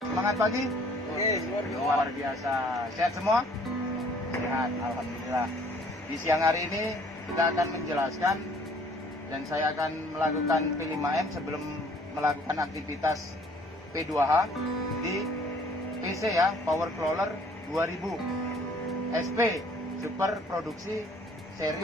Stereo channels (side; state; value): both; normal; correlation 0.58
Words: Semangat pagi. Luar biasa. Sehat semua? Sehat, alhamdulillah. Di siang hari ini kita akan menjelaskan dan saya akan melakukan P5M sebelum melakukan aktivitas P2H di PC ya, Power Crawler 2000 SP Super Produksi